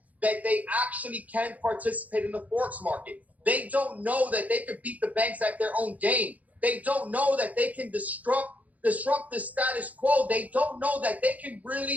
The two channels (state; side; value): late; left; 0.075 ms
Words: that they actually can participate in the Forex market. They don't know that they could beat the banks at their own game. They don't know that they can disrupt the status quo. They don't know that they can